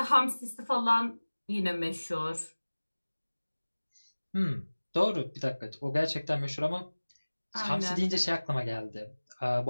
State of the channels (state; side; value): inverted; both; correlation -1.00